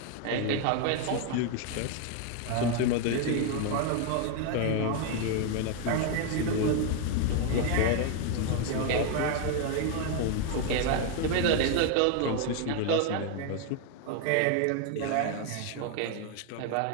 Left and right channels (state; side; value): different; both; correlation 0.01